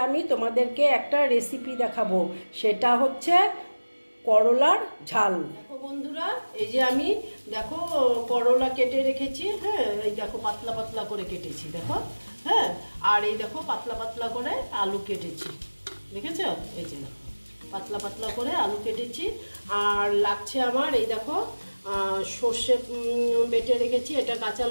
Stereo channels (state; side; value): inverted; both; correlation -1.00